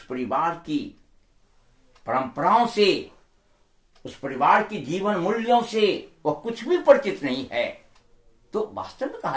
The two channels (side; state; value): both; identical; correlation 1.00